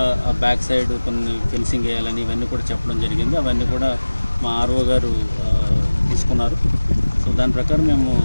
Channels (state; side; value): inverted; both; correlation -1.00